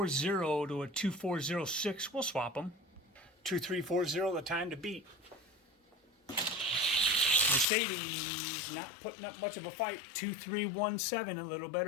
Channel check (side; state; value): right; drops out; at 7.7 s